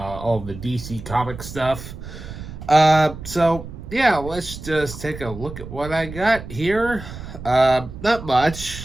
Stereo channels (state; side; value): noise; right; rumble, 12 dB below the sound